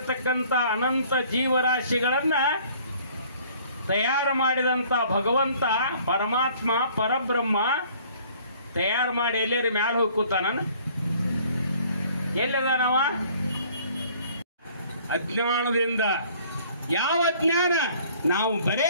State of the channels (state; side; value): inverted; both; correlation -0.56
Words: ಅನಂತ ಜೀವರಾಶಿಗಳನ್ನ ತಯಾರು ಮಾಡಿದಂಥ ಭಗವಂತ ಪರಮಾತ್ಮ ಪರಬ್ರಹ್ಮ ತಯಾರು ಮಾಡಿ ಎಲ್ಲೇರಿ ಮ್ಯಾಲ ಹೋಗಿ ಕೂತಾನ. ಎಲ್ಲಿದಾನವ? ಅಜ್ಞಾನದಿಂದ. ಯಾವ ಅಜ್ಞಾನ? ನಾವು